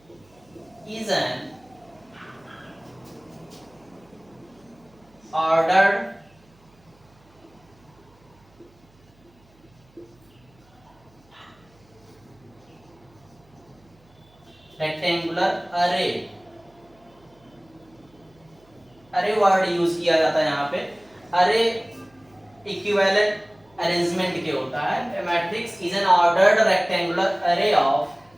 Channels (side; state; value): right; noise; hum, 30 dB below the sound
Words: is an ordered rectangular array। अरे वर्ड यूज किया जाता है यहाँ पे। अरे इक्विवेलेंट अरेंजमेंट के होता है। Matrix is an ordered rectangular array of